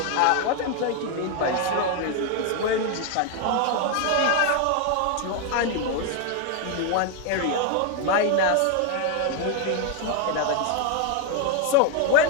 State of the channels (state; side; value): different; both; correlation 0.01